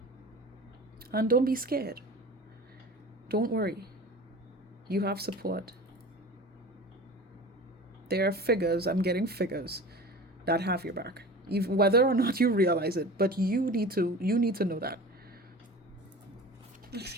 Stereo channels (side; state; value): both; normal; correlation 0.37